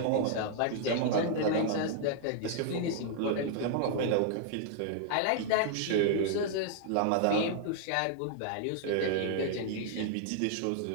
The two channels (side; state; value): both; different; correlation -0.01